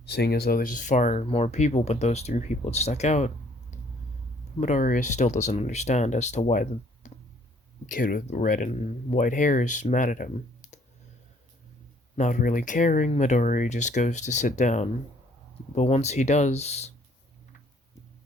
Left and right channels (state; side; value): normal; both; correlation 0.62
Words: seeing as though there's far more people, but those three people had stuck out. Midoriya still doesn't understand as to why the kid with red and white hair is mad at him. Not really caring, Midoriya just goes to sit down, but once he does,